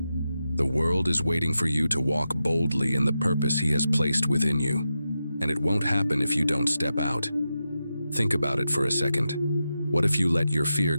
The world is waiting for you to walk boldly in the purpose He has placed within you. And it won't happen if you don't step out. Think about it for a second. What if you let your fear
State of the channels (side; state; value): both; inverted; correlation -0.90